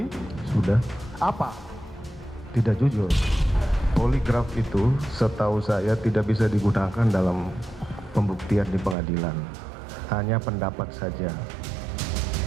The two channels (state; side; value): drops out; left; at 9.0 s